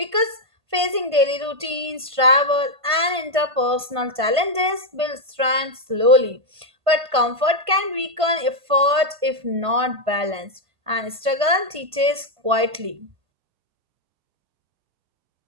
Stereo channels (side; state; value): left; late; 1.5 ms